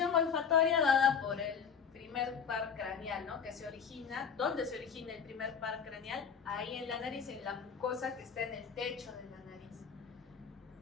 olfatoria dada por el primer par craneal, ¿no? Que se origina, ¿dónde se origina el primer par craneal? Ahí en la nariz, en la mucosa que está en el techo de la nariz.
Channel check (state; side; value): quieter; right; 6.8 dB